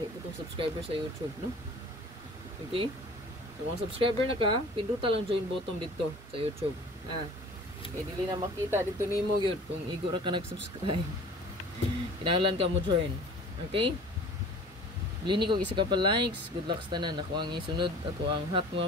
po tong subscriber sa YouTube, no? Okay? So kung subscriber na ka, pinduta lang join button dito sa YouTube. Okay, dili na makita dito nimo gyud kung igo ra ka nag-subscribe. Kinahanglan ka mo join. Okay? Lini ko isa ka pa likes. Good luck sa tanan. Ako ang isunod, ako ang hot mo,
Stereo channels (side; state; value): both; normal; correlation 0.45